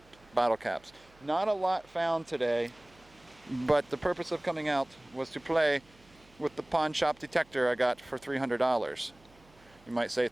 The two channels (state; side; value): noise; right; hum, 29 dB below the sound